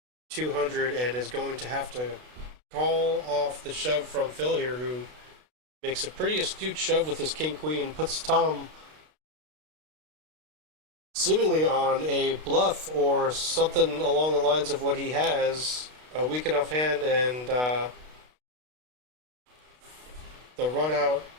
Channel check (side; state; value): left; late; 32 ms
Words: 200 and is going to have to call off the shove from Phil here, who makes a pretty astute shove with his king queen, puts Tom seemingly on a bluff or something along the lines of what he has, a weak enough hand, and the run out